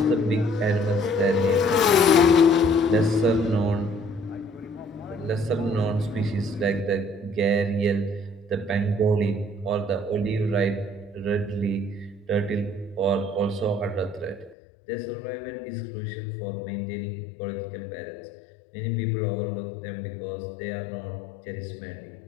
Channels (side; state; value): right; drops out; at 14.6 s